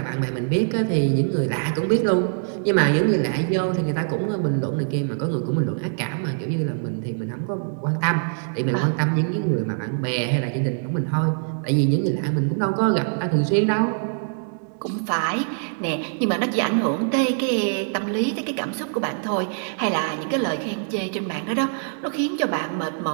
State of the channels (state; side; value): silent; left; digital silence